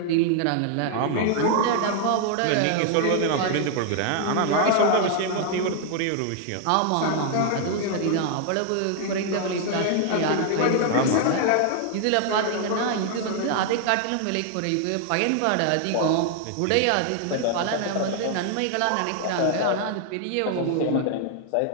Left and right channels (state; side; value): different; both; correlation 0.00